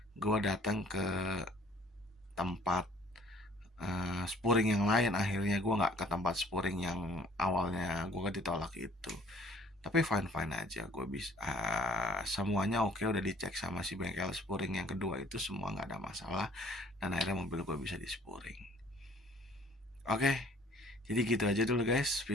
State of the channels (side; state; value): both; normal; correlation 0.55